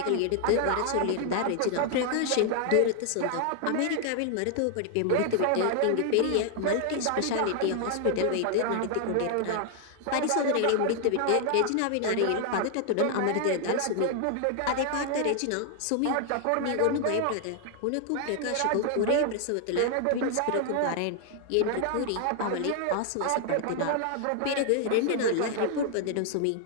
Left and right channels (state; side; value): different; both; correlation 0.00